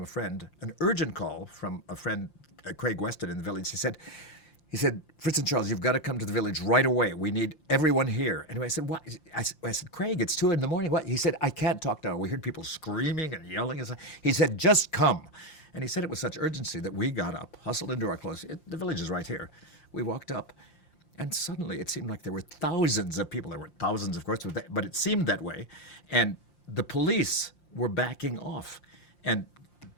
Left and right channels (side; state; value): right; late; 5.7 ms